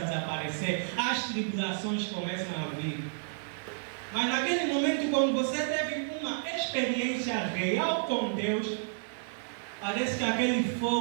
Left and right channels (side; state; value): left; silent; 55 dB below the other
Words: desaparecer. As tribulações começam a vir. Mas naquele momento, quando você teve uma experiência real com Deus, parece que aquele